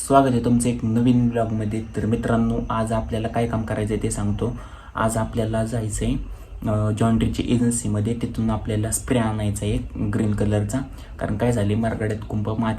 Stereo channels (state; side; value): identical; both; correlation 1.00